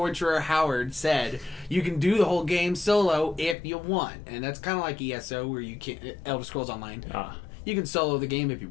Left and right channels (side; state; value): right; drops out; at 3.6 s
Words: Howard said you can do the whole game solo if you want, and that's kind of like ESO where you can Elder Scrolls Online. You can solo the game if you